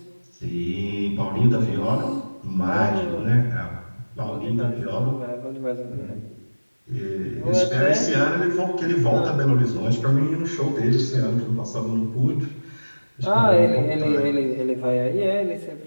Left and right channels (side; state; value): both; inverted; correlation -1.00